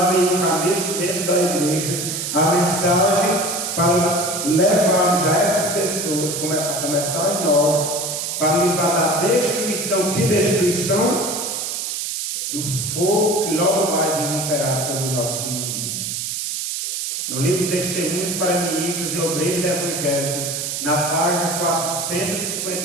dentro da igreja, a mensagem para levarmos a essas pessoas, a começar em nós, para livrar da destruição. Que destruição? Do fogo que logo mais irromperá sobre o nosso mundo. No livro Testemunhos para Ministros e Obreiros Evangélicos, na página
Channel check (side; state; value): right; noise; hiss, 3 dB below the sound